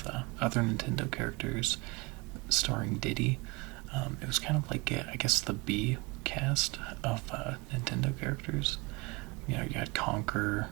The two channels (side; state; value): left; quieter; 25.9 dB